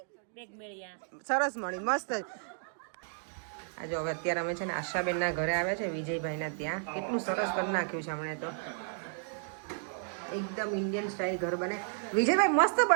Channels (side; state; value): left; silent; digital silence